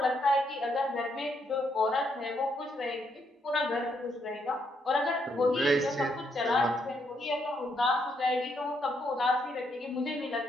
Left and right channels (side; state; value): both; normal; correlation 0.76